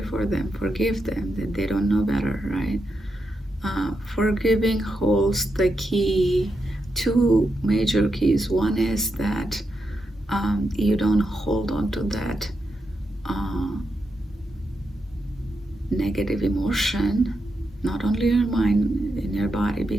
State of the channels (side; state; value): both; normal; correlation 0.85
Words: them, forgive them, that they don't know better, right? Forgiving holds the key, two major keys. One is that you don't hold on to that negative emotion, not only in your mind, in your body,